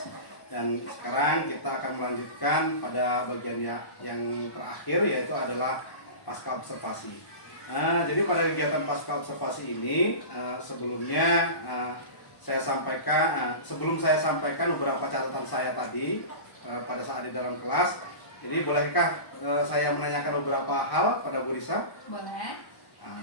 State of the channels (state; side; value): late; right; 1.1 ms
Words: dan sekarang kita akan melanjutkan pada bagian yang terakhir, yaitu adalah pasca observasi. Jadi pada kegiatan pasca observasi ini sebelumnya sebelum saya sampaikan beberapa catatan saya tadi pada saat di dalam kelas. Jadi bolehkah saya menanyakan beberapa hal pada Bu Risa? Boleh.